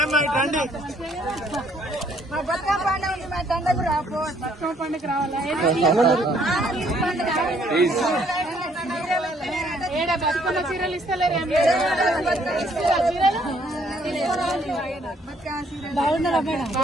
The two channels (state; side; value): normal; both; correlation 0.65